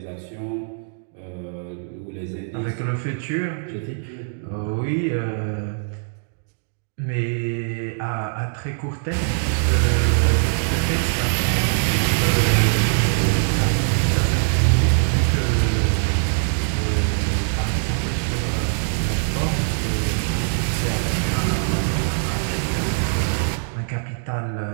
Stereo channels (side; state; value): left; silent; digital silence